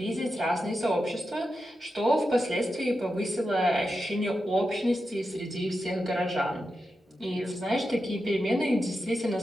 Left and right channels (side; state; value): both; normal; correlation 0.89